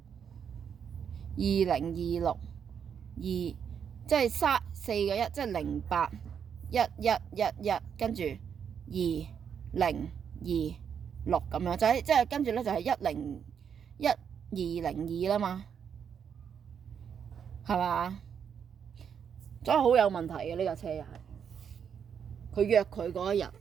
2026，即係4個1，即係08 1111，跟住2026咁樣，即係跟住咧就係10202啦嘛，係嘛？所以好有問題嘅呢架車又係，佢約佢嗰一日，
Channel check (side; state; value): left; quieter; 7.6 dB